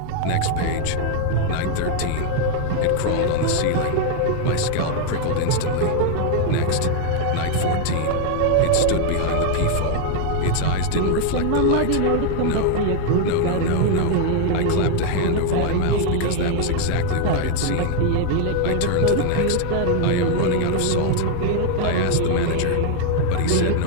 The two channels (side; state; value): both; different; correlation 0.00